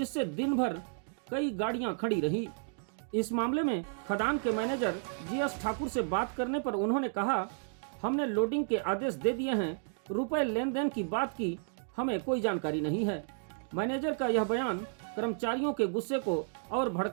दिन भर कई गाड़ियां खड़ी रही। इस मामले में खदान के मैनेजर जीएस ठाकुर से बात करने पर उन्होंने कहा, हमने लोडिंग के आदेश दे दिए हैं, रुपए लेन देन की बात की हमें कोई जानकारी नहीं है। मैनेजर का यह बयान कर्मचारियों के गुस्से को और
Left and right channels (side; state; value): left; silent; digital silence